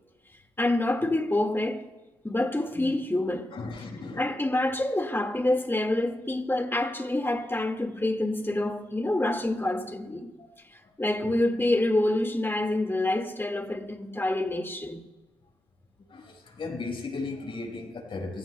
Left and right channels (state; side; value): normal; both; correlation 0.89